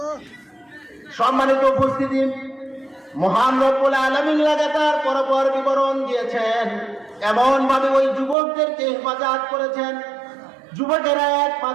সম্মানিত উপস্থিতি, মহান রব্বুল আলামিন লাগাতার পরপর বিবরণ দিয়েছেন, এমন ভাবে ওই যুবকদেরকে হেফাজত করেছেন। যুবকেরা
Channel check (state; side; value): drops out; left; at 8.3 s